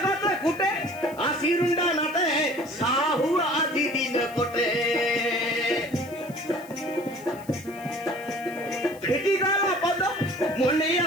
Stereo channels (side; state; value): left; noise; hiss, 22 dB below the sound